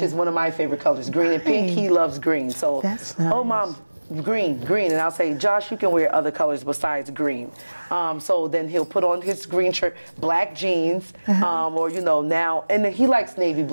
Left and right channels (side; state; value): both; inverted; correlation -1.00